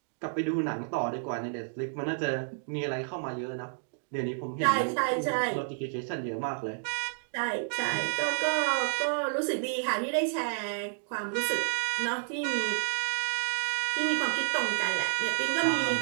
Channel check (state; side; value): silent; left; digital silence